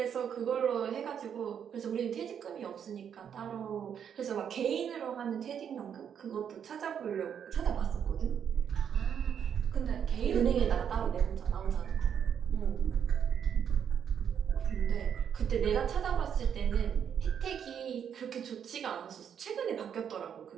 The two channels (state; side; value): quieter; left; 8.2 dB